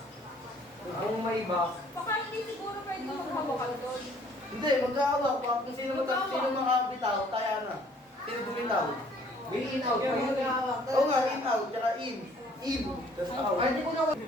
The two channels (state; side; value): normal; both; correlation 0.58